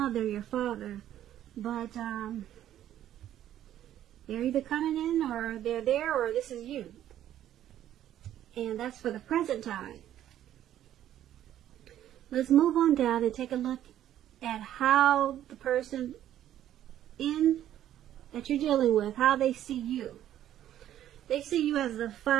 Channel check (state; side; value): quieter; left; 11.7 dB